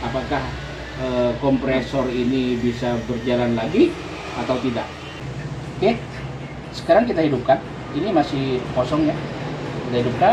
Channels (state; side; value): identical; both; correlation 1.00